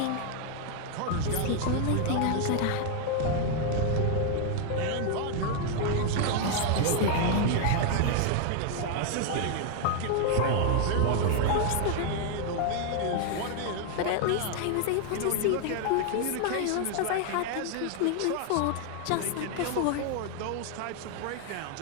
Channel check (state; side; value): different; both; correlation 0.00